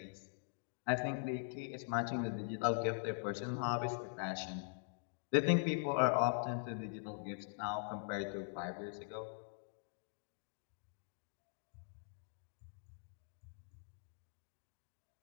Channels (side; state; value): right; silent; digital silence